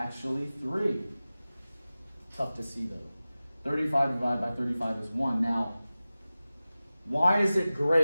3. Tough to see though. 35 divided by 35 is 1. Now, why is it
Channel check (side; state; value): both; inverted; correlation -0.96